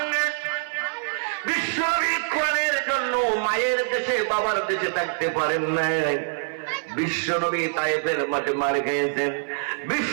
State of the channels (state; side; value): silent; left; 58 dB below the other